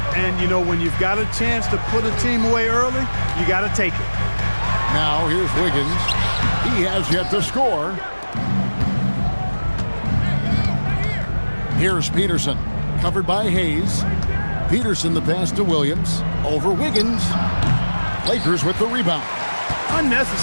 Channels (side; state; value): both; inverted; correlation -1.00